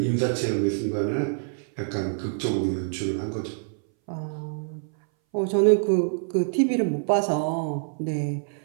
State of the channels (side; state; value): left; silent; 60 dB below the other